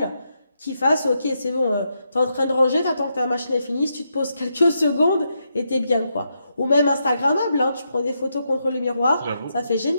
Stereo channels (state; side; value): inverted; both; correlation -0.82